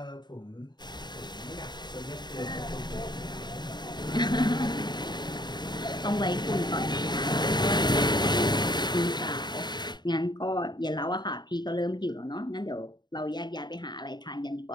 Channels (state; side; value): late; right; 0.21 ms